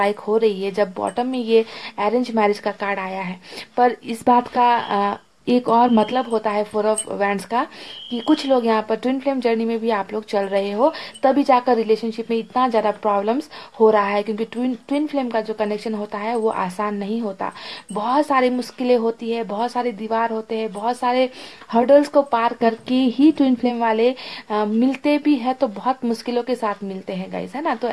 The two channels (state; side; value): identical; both; correlation 1.00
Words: हो रही है जब बॉटम में ये अरेंज मैरिज का कार्ड आया है। पर इस बात का एक और मतलब होता है फोर ऑफ वैंड्स का, कि कुछ लोग यहाँ पर ट्विन फ्लेम जर्नी में भी आप लोग चल रहे हो, तभी जाकर रिलेशनशिप में इतना ज़्यादा प्रॉब्लम्स हो रहा है, क्योंकि ट्विन फ्लेम का जो कनेक्शन होता है वो आसान नहीं होता। बहुत सारी मुश्किलें होती है, बहुत सारे दीवार होते हैं, बहुत सारे हर्डल्स को पार करके ही ट्विन फ्लेम वाले मिलते भी है, तो बहुत मुश्किलों के साथ मिलते हैं गाइस, है ना। तो